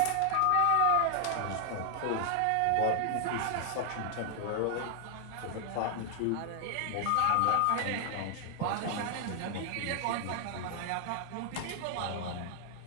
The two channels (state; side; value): different; both; correlation 0.00